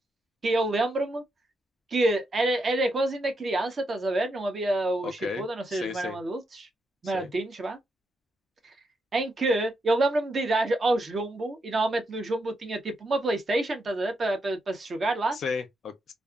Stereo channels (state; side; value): normal; both; correlation 0.82